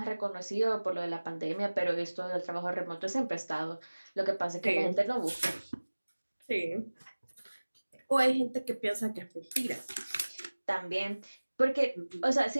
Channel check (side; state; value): both; inverted; correlation -1.00